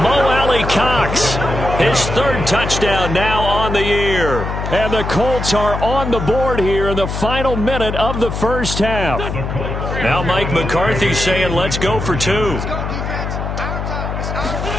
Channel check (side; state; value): left; noise; hum, 4 dB below the sound